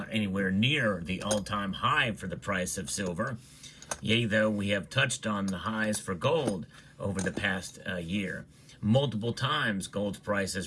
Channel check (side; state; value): both; identical; correlation 1.00